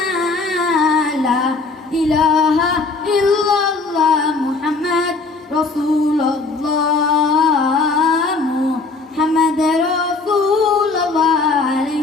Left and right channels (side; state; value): right; quieter; 3.9 dB